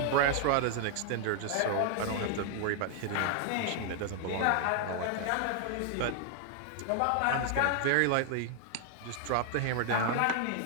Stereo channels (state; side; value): different; both; correlation 0.00